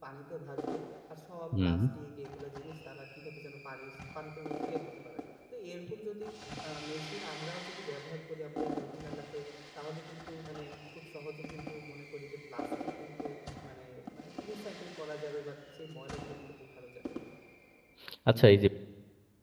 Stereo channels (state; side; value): identical; both; correlation 1.00